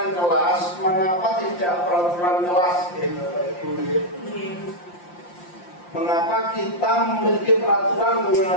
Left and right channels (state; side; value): late; right; 5.7 ms